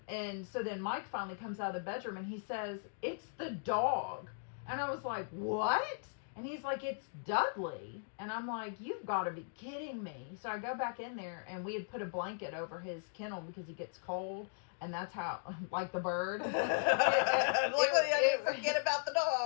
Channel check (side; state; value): right; silent; digital silence